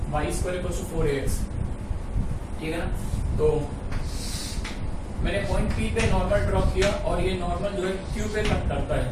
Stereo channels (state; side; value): identical; both; correlation 1.00